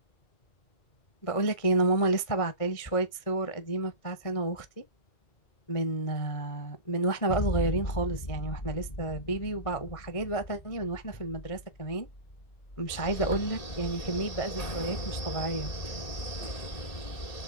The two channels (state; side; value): late; right; 1.6 ms